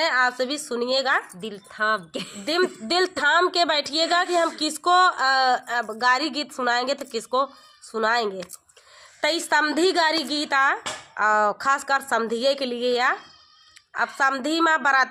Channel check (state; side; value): identical; both; correlation 1.00